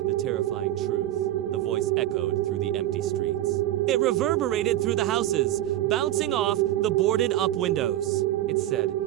terrifying truth. The voice echoed through the empty streets. It reverberated through the houses, bouncing off the boarded-up windows. It said,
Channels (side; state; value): left; quieter; 13.8 dB